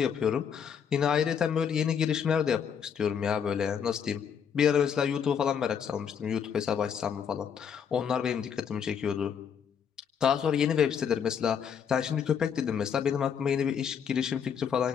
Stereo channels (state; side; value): quieter; right; 7.6 dB